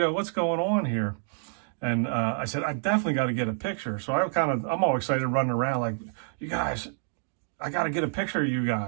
going on here? And I said, I definitely got to get a picture. So I'm all excited running around like, you guys, I got to get a picture of you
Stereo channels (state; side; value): silent; left; digital silence